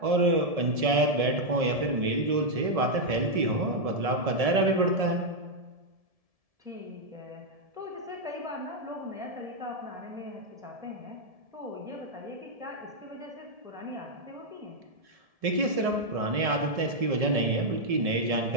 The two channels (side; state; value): left; late; 1.7 ms